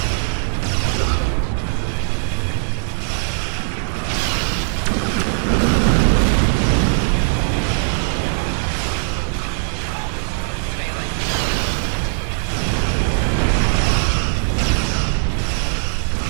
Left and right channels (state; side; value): silent; left; 66 dB below the other